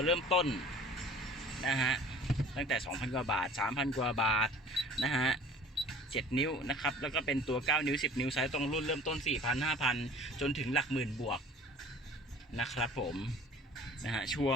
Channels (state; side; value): normal; both; correlation 0.47